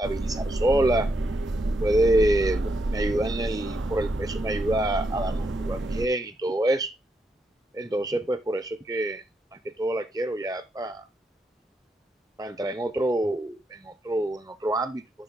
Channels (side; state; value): both; normal; correlation 0.81